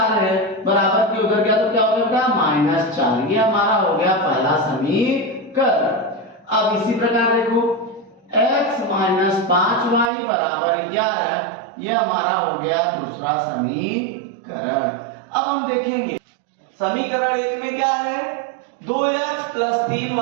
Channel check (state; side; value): drops out; left; at 10.1 s